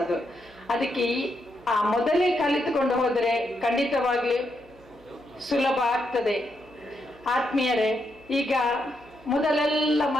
ಅದು. ಅದಕ್ಕೆ ಆ ಮೊದಲೇ ಕಲಿತುಕೊಂಡು ಹೋದರೆ ಖಂಡಿತವಾಗ್ಲಿ ಸುಲಭ ಆಗ್ತದೆ. ಆತ್ಮೀಯರೇ, ಈಗ ಮೊದಲೆಲ್ಲ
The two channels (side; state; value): right; noise; hum, 27 dB below the sound